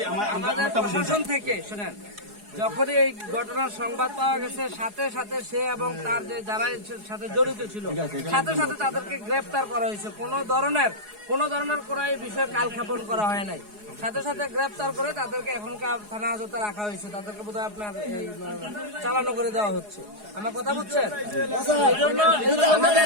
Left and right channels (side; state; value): left; late; 4.8 ms